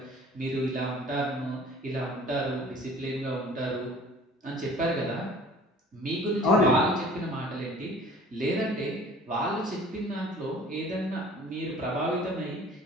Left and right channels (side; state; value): both; normal; correlation 0.48